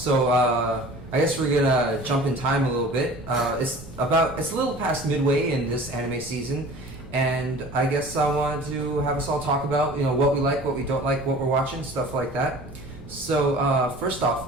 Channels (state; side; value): noise; right; rumble, 17 dB below the sound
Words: I guess we're gonna jump in time a little bit. It's a little past midway in this anime season, and I guess I wanted to have us all talk about, what we like, what we don't like, what we're watching, stuff like that. So, first off,